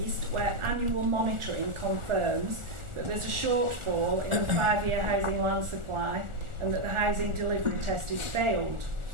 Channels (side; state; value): left; late; 1.4 ms